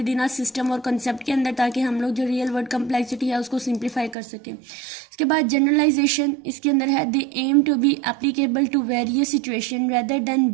within a system और कंसेप्ट के अंदर, ताकि हम लोग जो रियल वर्ल्ड कम्प्लेक्सिटी है उसको सिंप्लीफाई कर सकें। इसके बाद जनरलाइजेशन, इसके अंदर है they aim to be applicable to various situation rather than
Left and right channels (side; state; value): left; drops out; at 4.2 s